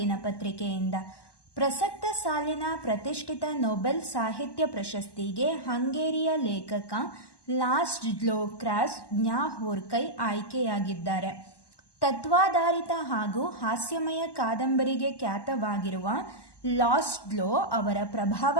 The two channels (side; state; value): right; late; 1.1 ms